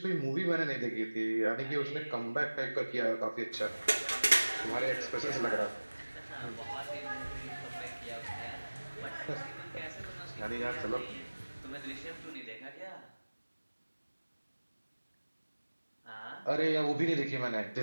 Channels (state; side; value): inverted; both; correlation -1.00